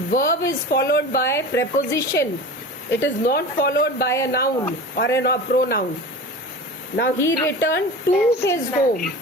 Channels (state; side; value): normal; both; correlation 0.33